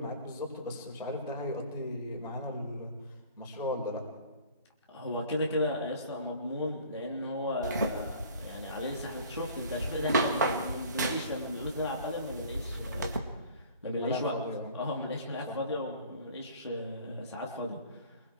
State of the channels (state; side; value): inverted; both; correlation -0.48